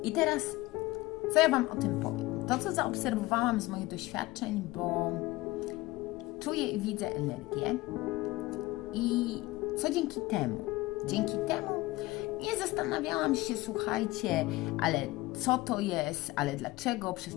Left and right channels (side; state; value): right; quieter; 19.7 dB